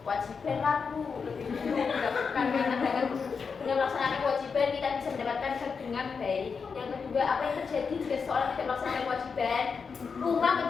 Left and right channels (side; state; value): right; quieter; 5.5 dB